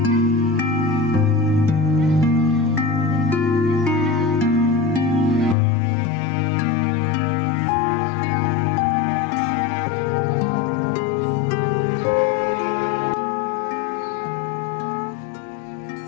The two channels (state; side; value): drops out; right; at 5.6 s